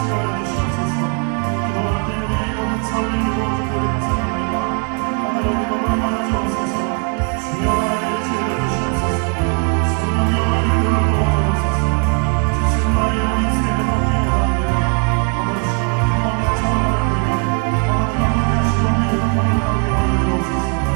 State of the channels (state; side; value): quieter; left; 39.3 dB